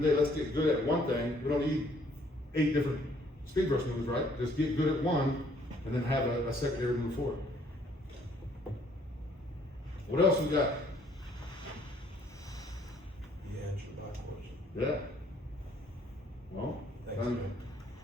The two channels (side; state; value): both; normal; correlation 0.63